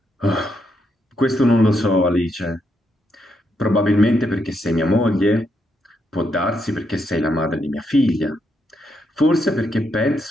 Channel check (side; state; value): both; normal; correlation 0.79